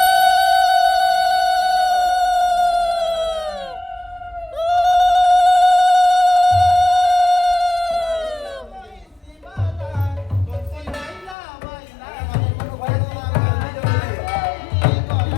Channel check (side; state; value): right; drops out; at 11.4 s